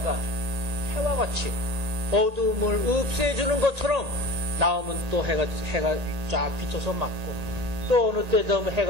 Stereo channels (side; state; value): left; late; 1.8 ms